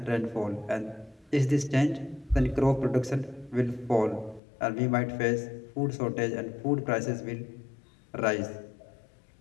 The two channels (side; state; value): right; drops out; at 4.4 s